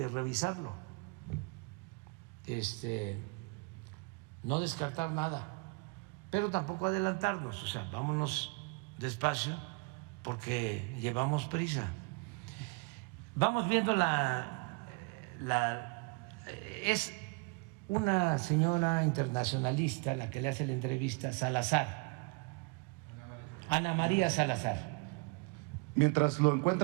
revisarlo. No descartar nada, pero tampoco adelantarnos. O sea, vámonos despacio porque llevamos prisa. Vamos viendo es una señora internacionalista la que le hace la entrevista, Salazar, Ana María Salazar. Mientras lo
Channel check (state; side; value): quieter; left; 31.8 dB